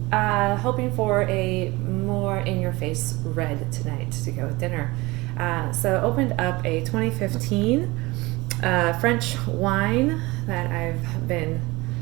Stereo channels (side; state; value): left; quieter; 22.2 dB